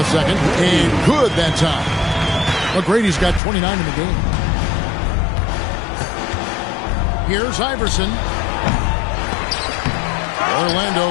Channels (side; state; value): right; drops out; at 3.4 s